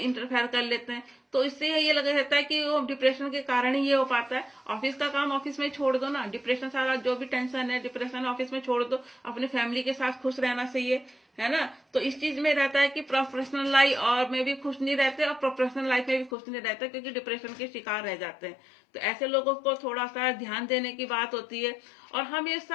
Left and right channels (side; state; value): right; drops out; at 16.3 s